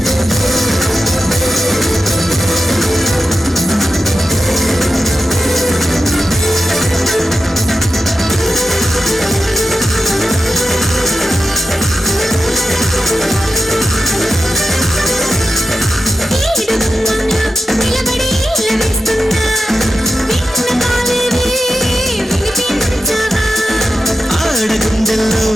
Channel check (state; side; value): normal; both; correlation 0.90